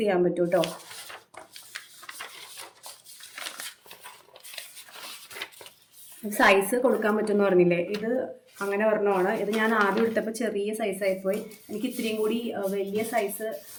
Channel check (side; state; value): both; identical; correlation 1.00